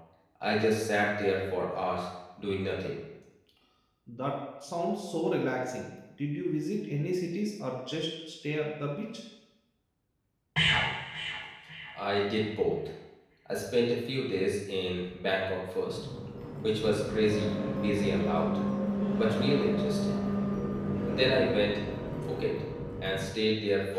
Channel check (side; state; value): both; identical; correlation 1.00